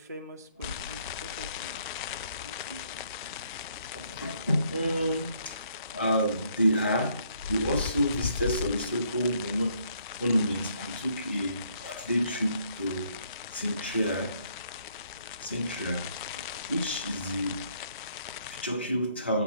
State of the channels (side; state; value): both; inverted; correlation -0.68